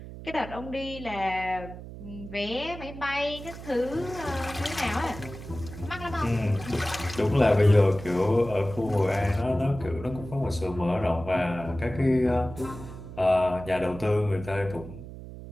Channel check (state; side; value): noise; right; hum, 13 dB below the sound